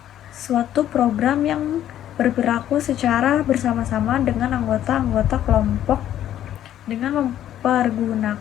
suatu program yang berperilaku secara bersama-sama dengan anggota-anggota kelompok dengan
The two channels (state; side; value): quieter; right; 11.5 dB